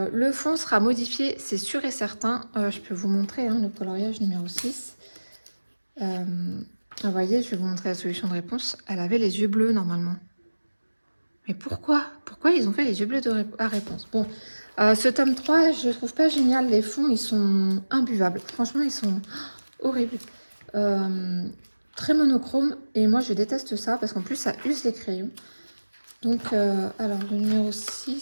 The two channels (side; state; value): both; inverted; correlation -1.00